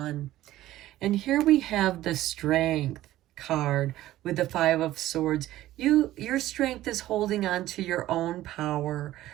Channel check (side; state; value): left; quieter; 14.8 dB